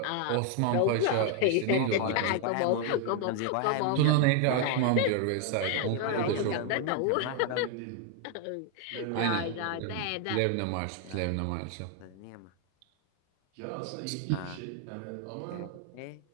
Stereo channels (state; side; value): different; both; correlation 0.00